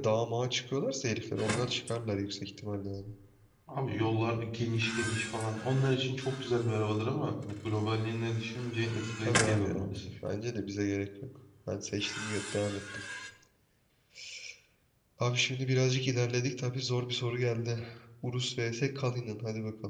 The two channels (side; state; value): both; identical; correlation 1.00